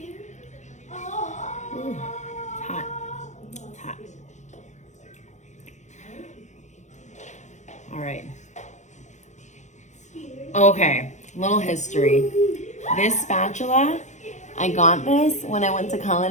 Ooh, it's hot. It's hot. All right. Okay, little history. This spatula, I got this when I went to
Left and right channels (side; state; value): right; late; 0.34 ms